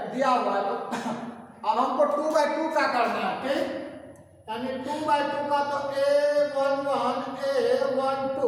दिया हुआ है, अब हमको 2/2 का करना है। ठीक, यानी 2/2 का तो A11 A12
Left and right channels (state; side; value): identical; both; correlation 1.00